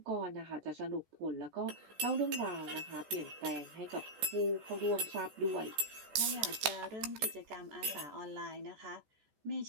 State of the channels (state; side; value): late; left; 14 ms